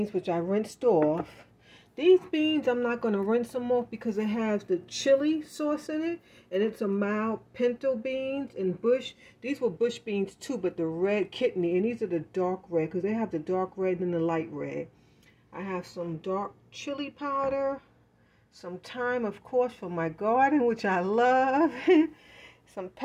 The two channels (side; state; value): both; identical; correlation 1.00